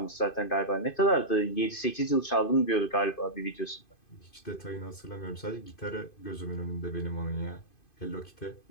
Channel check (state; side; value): late; right; 2.5 ms